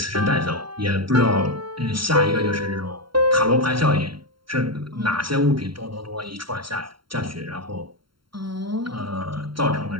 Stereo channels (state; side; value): late; left; 0.73 ms